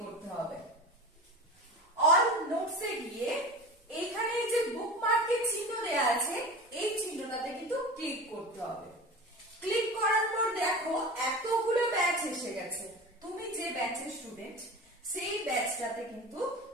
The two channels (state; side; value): normal; both; correlation 0.32